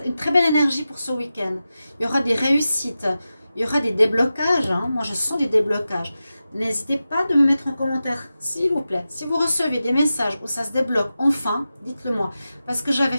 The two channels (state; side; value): inverted; both; correlation -0.93